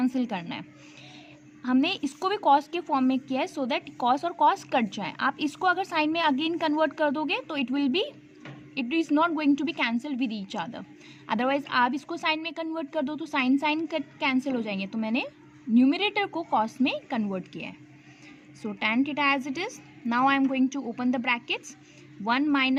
करना है. हमने इसको भी cos के फॉर्म में किया है सो दैट cos और cos कट जाए. आप इसको अगर साइन में अगेन कन्वर्ट कर दोगे तो it is not going to be cancel with each other. Otherwise आप इसको साइन में कन्वर्ट कर दो तो साइन कट कैंसिल हो जाएंगे. तो मैंने न्यूमरेटर को cos में कन्वर्ट किया है. So tan theta as it is. Now I am going to open the brackets. 1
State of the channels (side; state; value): both; identical; correlation 1.00